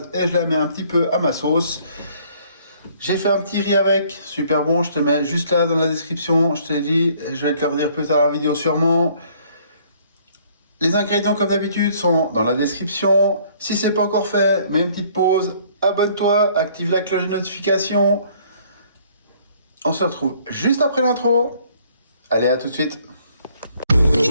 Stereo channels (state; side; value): inverted; both; correlation -0.60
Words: et je la mets un petit peu à ma sauce. J'ai fait un petit riz avec, super bon, je te mets juste là dans la description. Je t'ai dit, je vais te le redire plus tard dans la vidéo sûrement. Les ingrédients comme d'habitude sont dans la description. Si c'est pas encore fait, mets une petite pause, abonne-toi, active la cloche de notification. On se retrouve juste après l'intro. Allez, à tout de suite.